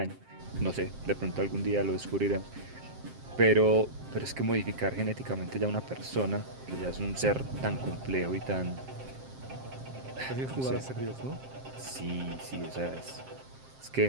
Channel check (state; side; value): late; left; 7.6 ms